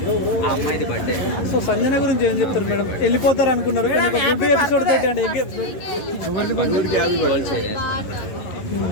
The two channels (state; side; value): late; right; 11 ms